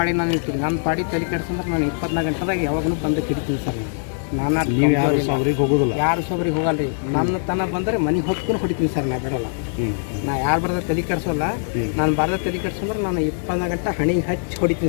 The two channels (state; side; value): silent; right; digital silence